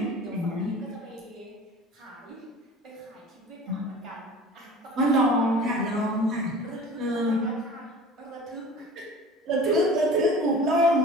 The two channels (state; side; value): normal; both; correlation 0.41